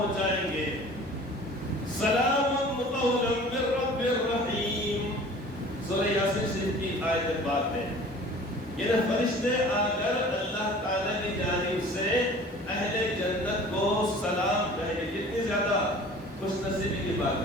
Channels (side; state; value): both; normal; correlation 0.45